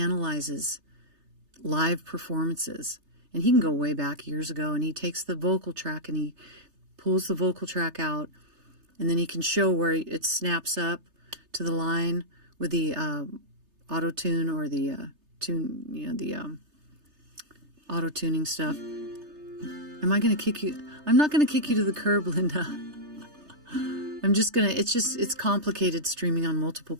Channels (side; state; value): left; late; 3.3 ms